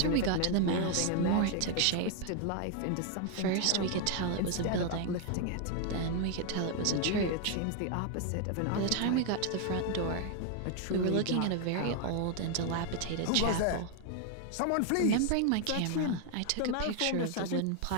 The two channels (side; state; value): both; different; correlation 0.01